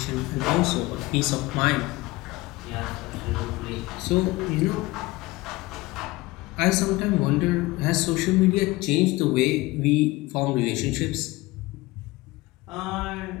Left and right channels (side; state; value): right; quieter; 20.6 dB